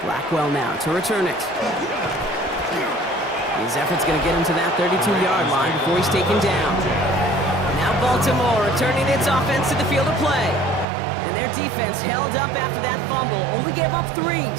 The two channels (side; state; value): left; drops out; at 10.9 s